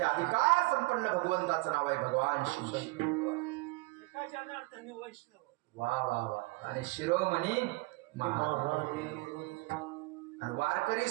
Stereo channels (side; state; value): left; quieter; 24.1 dB